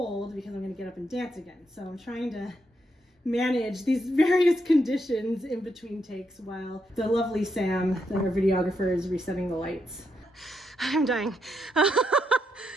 because I'm gonna get up and dance again. So I'm trying to manage these various conditions in between takes while the lovely Sam, our videographer, is resetting the lights. I'm dying.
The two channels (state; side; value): normal; both; correlation 0.80